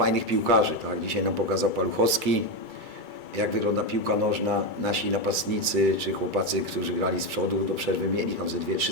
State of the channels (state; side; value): late; left; 2.3 ms